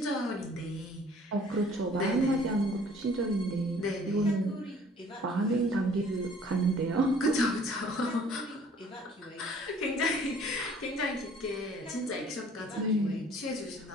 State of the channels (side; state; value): both; normal; correlation 0.54